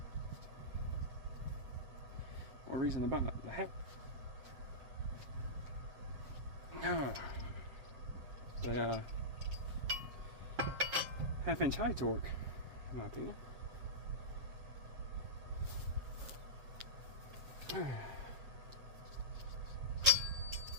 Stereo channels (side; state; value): left; late; 7.4 ms